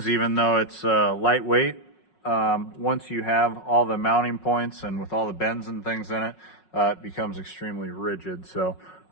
even though it's lightweight. Once you have all the mounting points and with all the bends and things in it, it becomes extremely rigid. So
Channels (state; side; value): late; right; 5.5 ms